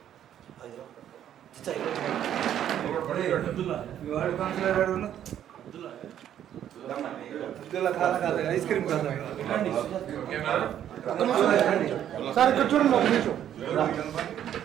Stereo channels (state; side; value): quieter; left; 10.5 dB